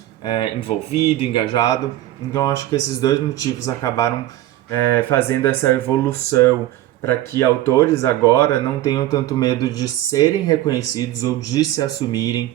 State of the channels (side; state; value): left; quieter; 14.5 dB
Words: envolvido, engajado. Então acho que esses dois motivos acabaram fazendo essa evolução para que autores agora não tenham tanto medo de serem reconhecidos ou de se